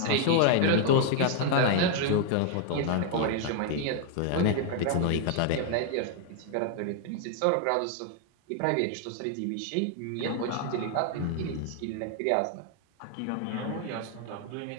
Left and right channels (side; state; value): both; different; correlation 0.00